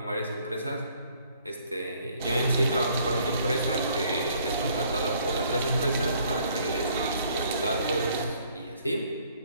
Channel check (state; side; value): inverted; both; correlation -0.63